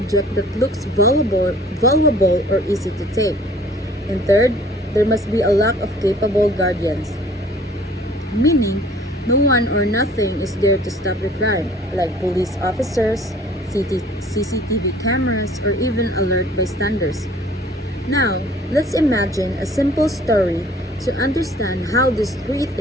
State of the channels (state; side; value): normal; both; correlation 0.53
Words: that looks valuable or easy to take. And third, there must be a lack of capable guardians, meaning no one or nothing is there to stop the crime, like police officers, CCTV cameras, or even alert bystanders. Now, let's imagine a simple story to understand how these three